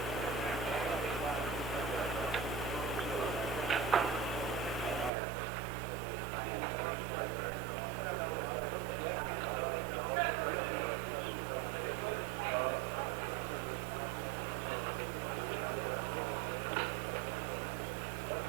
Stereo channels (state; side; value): drops out; left; at 5.1 s